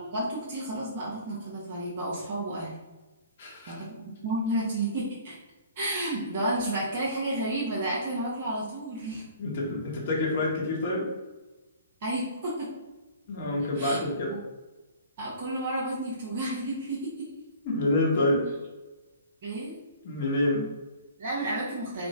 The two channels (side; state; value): both; inverted; correlation -0.48